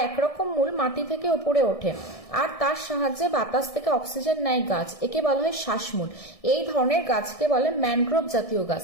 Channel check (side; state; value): right; late; 1.6 ms